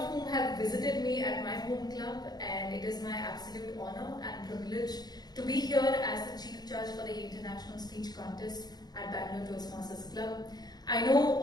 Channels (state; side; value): late; right; 0.19 ms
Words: whom have visited me at my home club, and it is my absolute honor and privilege to be here as the Chief Judge for the International Speech Contest at Bangalore Toastmasters Club. I know